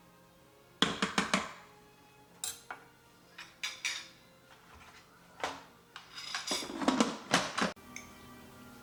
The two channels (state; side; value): identical; both; correlation 1.00